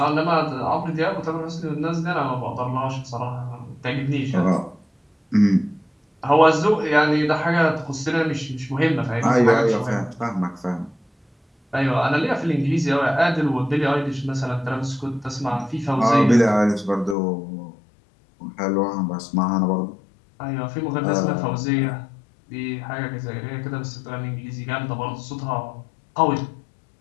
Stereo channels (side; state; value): right; drops out; at 17.2 s